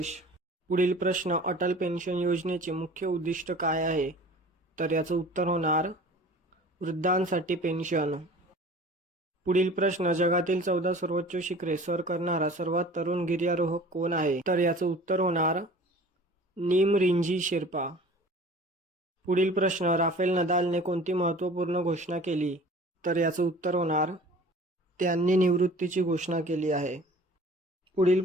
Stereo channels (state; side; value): normal; both; correlation 0.44